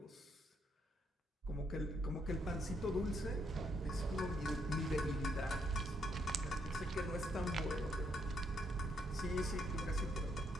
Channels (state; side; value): normal; both; correlation 0.75